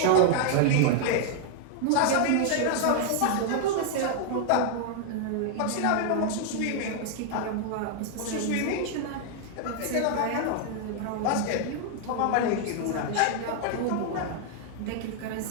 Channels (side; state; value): both; different; correlation 0.00